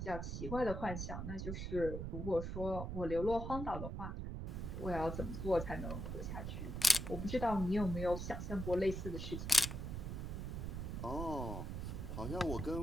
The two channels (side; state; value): right; noise; rumble, 4 dB below the sound